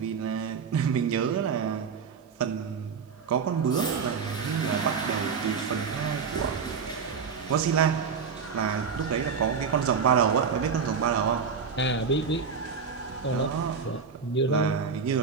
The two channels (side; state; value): left; quieter; 5.9 dB